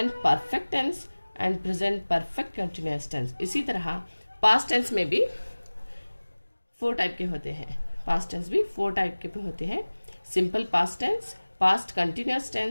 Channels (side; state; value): both; inverted; correlation -1.00